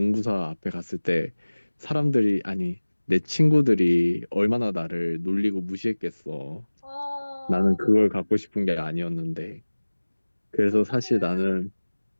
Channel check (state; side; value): inverted; both; correlation -1.00